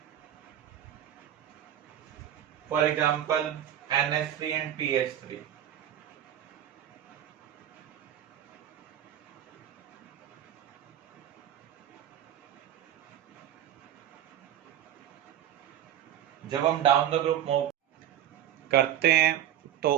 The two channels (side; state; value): left; quieter; 11.1 dB